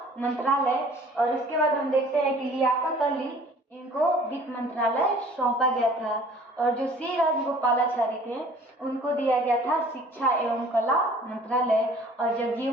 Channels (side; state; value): both; normal; correlation 0.51